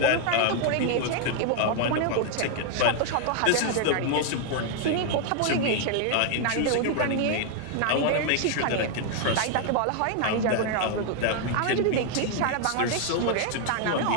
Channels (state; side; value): different; both; correlation 0.00